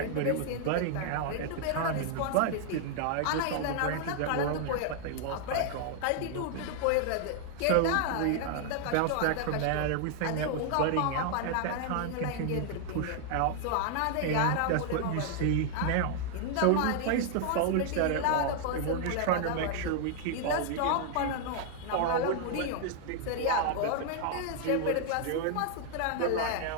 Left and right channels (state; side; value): different; both; correlation 0.00